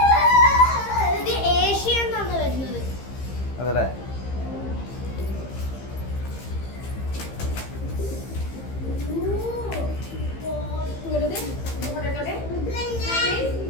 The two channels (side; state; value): right; late; 15 ms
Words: ഇത് ഏഷ്യ എന്നാണ് വരുന്നത്. അതല്ലേ?